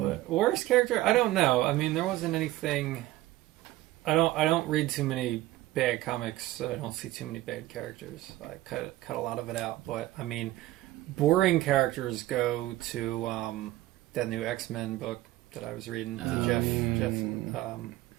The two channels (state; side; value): quieter; left; 16.5 dB